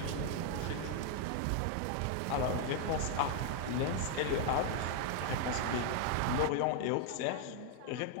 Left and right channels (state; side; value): different; both; correlation 0.00